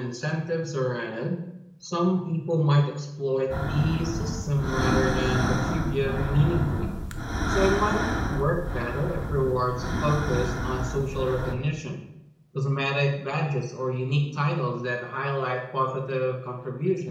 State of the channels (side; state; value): both; identical; correlation 1.00